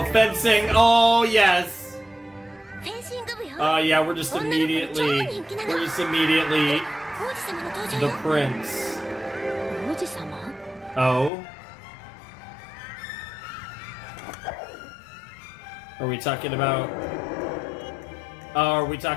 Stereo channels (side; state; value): right; drops out; at 11.3 s